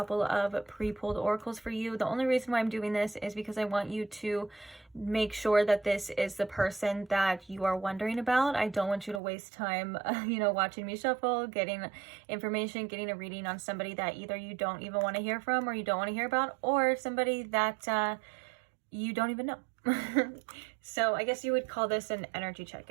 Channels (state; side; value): drops out; left; at 9.2 s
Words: of pre-pulled oracles for you. The only reason why I'm doing this is because I want you to make sure that this is the person that you are wondering about. I don't want you to waste time, watching me shuffle, getting information, getting a reading on somebody that either you don't even want to hear from, or you don't want to hear about, or somebody that you don't even know. So I guess you would call this an energy